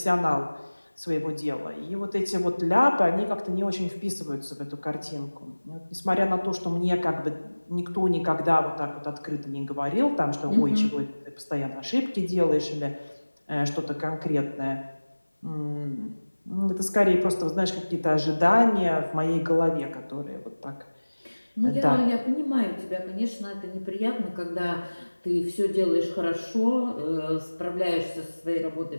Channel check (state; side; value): inverted; both; correlation -1.00